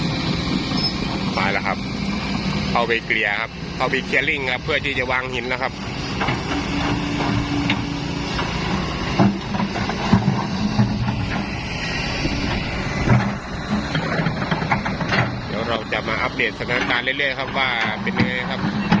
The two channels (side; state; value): both; identical; correlation 1.00